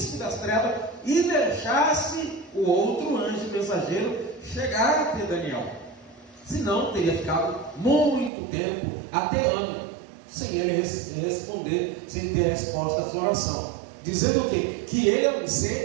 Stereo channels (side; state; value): left; drops out; at 8.3 s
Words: das trevas e deixasse o outro anjo mensageiro chegar até Daniel. Senão teria ficado muito tempo, até ano, sem ele responder, sem ter resposta à sua oração. Dizendo o quê? Que ele é um